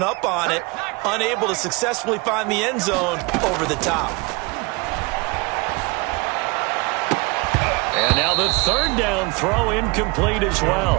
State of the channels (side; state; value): left; quieter; 26.6 dB